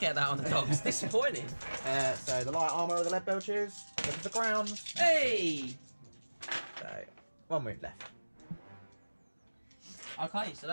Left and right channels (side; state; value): both; inverted; correlation -1.00